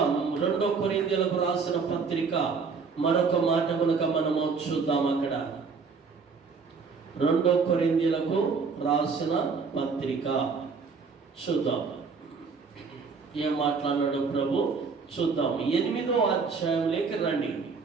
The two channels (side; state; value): left; quieter; 5.0 dB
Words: 2 కొరింథీయులకు రాసిన పత్రిక మరొక మాట కనుక మనము చూద్దాం. అక్కడ 2 కొరింథీయులకు రాసిన పత్రిక చూద్దాం ఏం మాట్లాడాడు ప్రభు. చూద్దాం 8వ అధ్యాయంలోకి రండి.